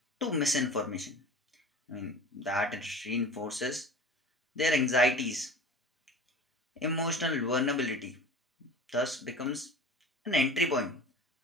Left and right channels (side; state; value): both; normal; correlation 0.39